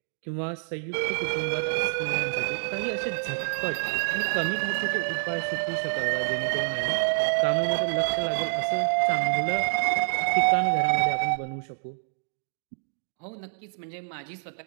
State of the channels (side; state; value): left; silent; digital silence